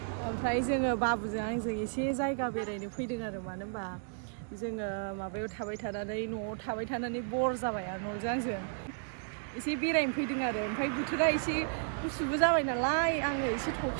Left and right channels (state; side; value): silent; left; digital silence